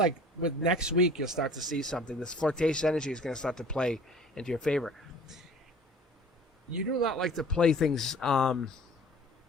with next week, you'll start to see something. This flirtatious energy is going to start to play into your favor. You do not like to play things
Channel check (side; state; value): both; normal; correlation 0.47